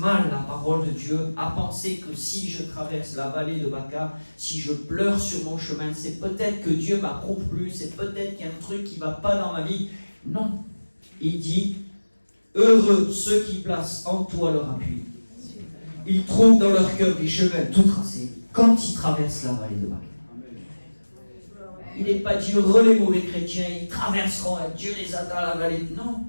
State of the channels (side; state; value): both; inverted; correlation -1.00